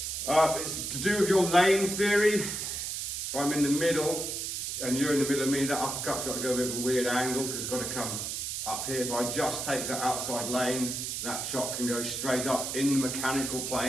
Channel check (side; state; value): right; noise; hiss, 3 dB below the sound